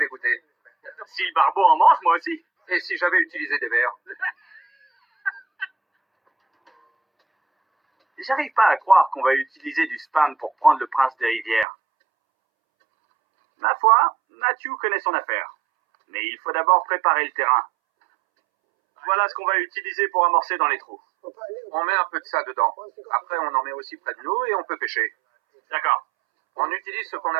goûter. Si le barbeau en mange, moi aussi. Et si j'avais utilisé des vers? J'arrive pas à croire qu'on va utiliser du spam pour prendre le prince des rivières. Ma foi, Matthew connaît son affaire. Mais il faut d'abord préparer le terrain. Voilà ce qu'on va utiliser pour amorcer dans les trous. On met un peu de ça dedans. Après, on en met aussi près de nous et on peut pêcher. D'accord. On utilise ce qu'on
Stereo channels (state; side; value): drops out; left; at 11.7 s